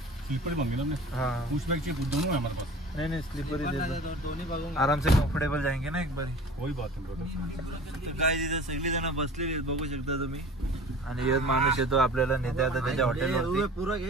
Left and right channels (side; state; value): both; normal; correlation 0.42